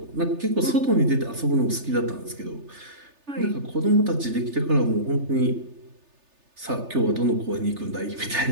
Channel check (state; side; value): late; left; 3.3 ms